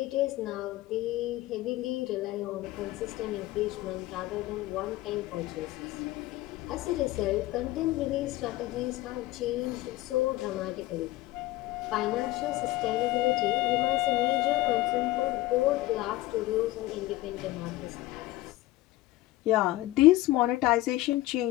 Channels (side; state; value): right; quieter; 17.6 dB